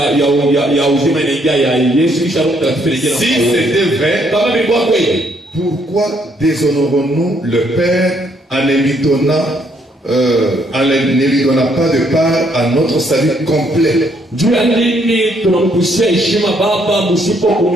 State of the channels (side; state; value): both; normal; correlation 0.70